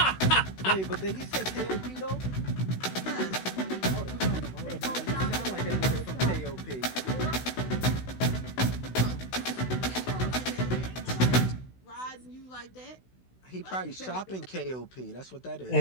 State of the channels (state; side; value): late; right; 16 ms